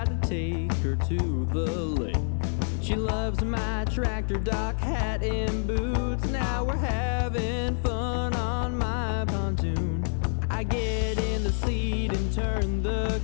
to take her to the lake. She loves my tractor, dock hat, and boots. Now we're having fun on my pontoon. I get in the seat and turn the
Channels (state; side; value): silent; right; 60 dB below the other